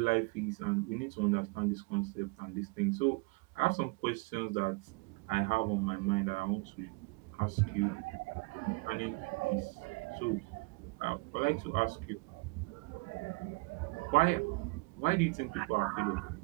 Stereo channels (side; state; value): left; quieter; 28.3 dB